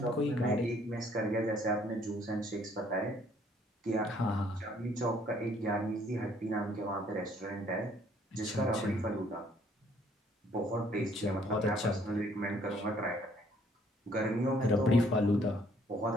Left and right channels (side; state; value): both; normal; correlation 0.63